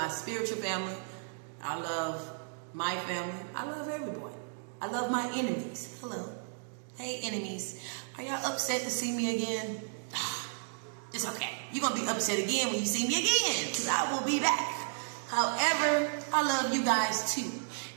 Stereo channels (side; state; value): left; silent; digital silence